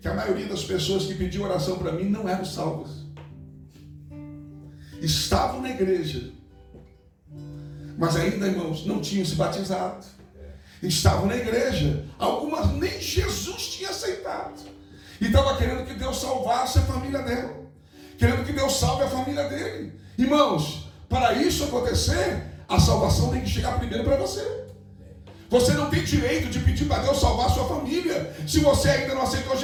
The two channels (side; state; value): both; identical; correlation 1.00